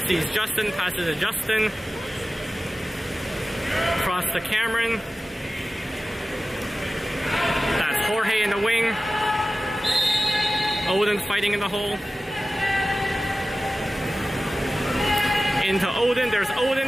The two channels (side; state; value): both; normal; correlation 0.95